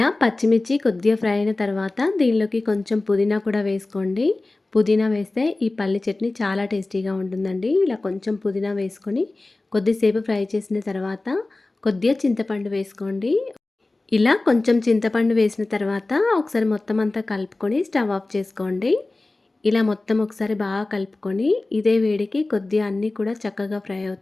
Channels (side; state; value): right; quieter; 3.1 dB